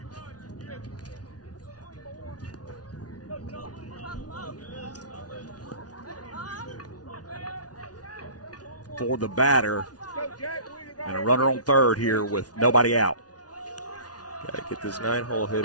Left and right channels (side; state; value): right; late; 0.69 ms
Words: For the batter, and a runner on third here with nobody out. Got to get this 9-hole